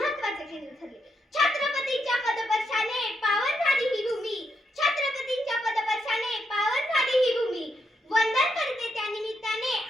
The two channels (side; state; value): both; normal; correlation 0.80